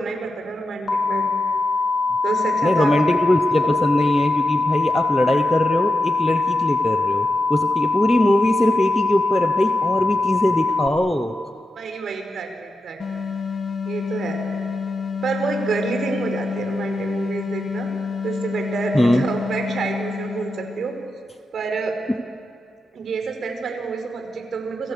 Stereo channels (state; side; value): normal; both; correlation 0.88